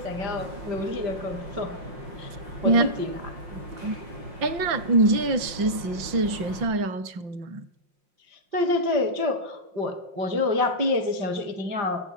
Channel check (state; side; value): late; left; 5.9 ms